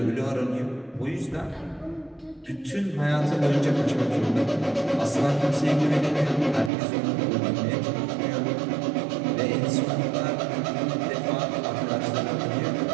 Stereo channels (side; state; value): left; drops out; at 6.7 s